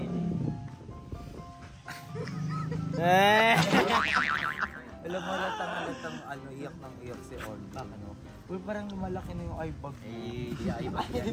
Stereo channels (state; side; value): identical; both; correlation 1.00